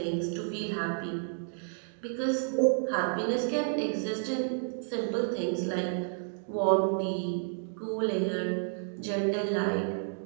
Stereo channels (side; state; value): left; silent; digital silence